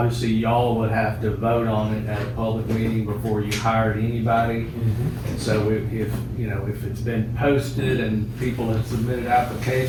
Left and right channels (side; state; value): both; identical; correlation 1.00